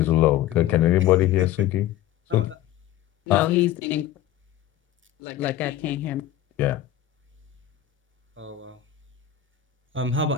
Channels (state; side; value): quieter; right; 12.1 dB